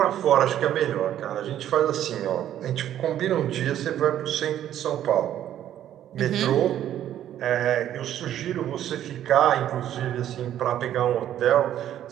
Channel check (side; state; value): left; quieter; 11.4 dB